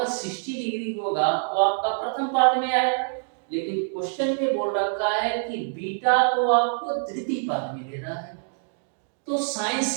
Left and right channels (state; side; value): silent; left; digital silence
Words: 60 डिग्री होगा वो आपका प्रथम पाद में आएगा, लेकिन क्वेश्चन में बोल रखा है कि बीटा को आपको तृतीय पाद में लेना है। तो साइन